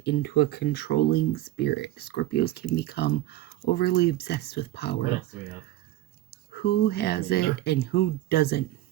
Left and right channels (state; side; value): quieter; left; 15.2 dB